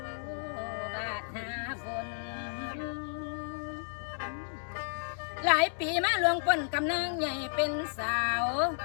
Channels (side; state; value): right; silent; digital silence